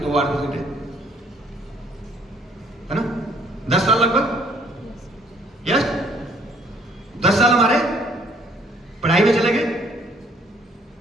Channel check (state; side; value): normal; both; correlation 0.61